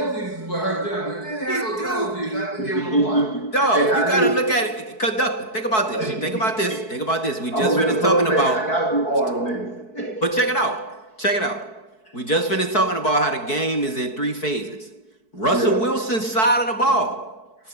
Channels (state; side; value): late; right; 4.6 ms